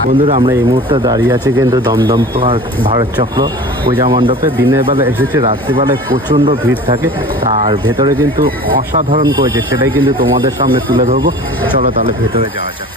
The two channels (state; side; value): normal; both; correlation 0.40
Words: বন্ধুরা আমরা এই মুহূর্তে দাঁড়িয়ে আছি কিন্তু দমদম পার্ক ভারত চক্র পূজা মণ্ডপে। দিনের বেলা এসেছে, রাত্রিবেলায় প্রচণ্ড ভিড় থাকে আর ভেতরে কিন্তু অসাধারণ করেছে, সেটাই কিন্তু তোমাদের সামনে তুলে ধরবো। চলো তাহলে ভেতরে যাওয়া যাক।